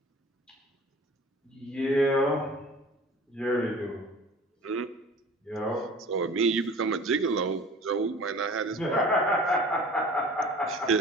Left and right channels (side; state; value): both; normal; correlation 0.43